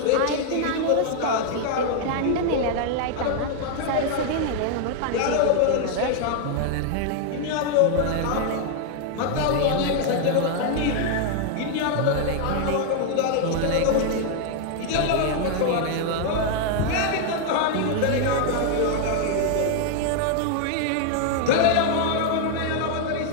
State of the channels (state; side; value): different; both; correlation 0.00